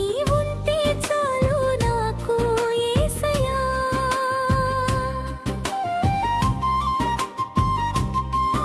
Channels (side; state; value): both; identical; correlation 1.00